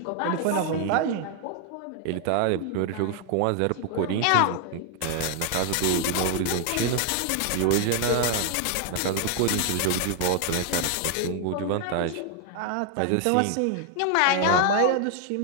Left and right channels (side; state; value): both; different; correlation 0.00